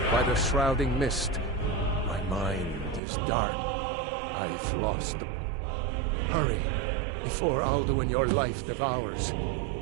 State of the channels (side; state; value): left; drops out; at 3.0 s